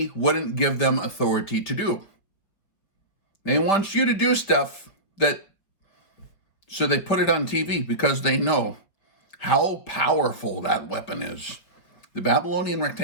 wouldn't give them authority to do. They want you to do stuff so they put it on TV because they know how powerful that weapon is. The Babylonian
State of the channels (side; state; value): right; late; 5.4 ms